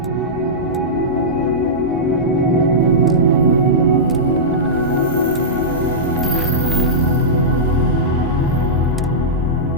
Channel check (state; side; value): normal; both; correlation -0.13